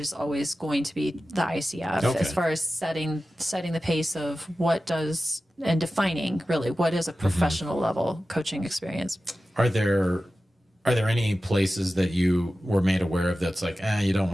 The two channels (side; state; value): both; normal; correlation 0.94